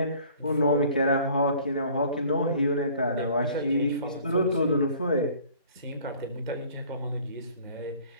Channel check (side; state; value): both; inverted; correlation -0.52